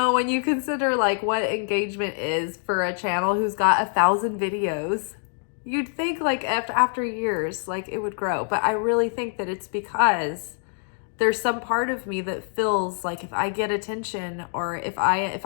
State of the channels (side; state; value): right; silent; 62 dB below the other